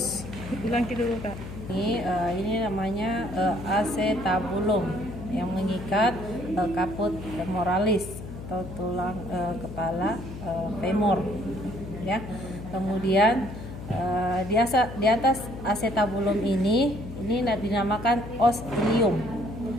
Ulangi dulu Kak. Ini namanya acetabulum yang mengikat caput femoralis atau tulang kepala femur ya. Kemudian di atas acetabulum ini dinamakan os ilium.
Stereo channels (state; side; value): noise; left; hum, 11 dB below the sound